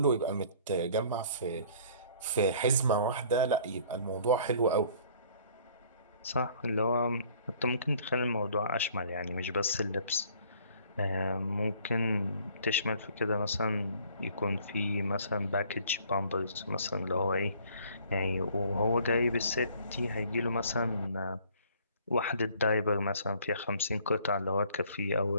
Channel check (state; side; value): inverted; both; correlation -0.56